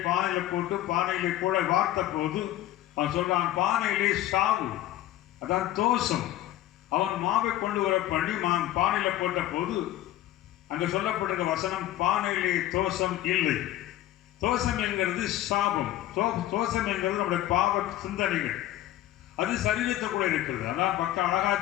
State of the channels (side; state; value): right; quieter; 14.1 dB